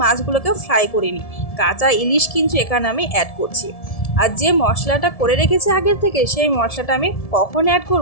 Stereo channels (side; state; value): right; late; 1.7 ms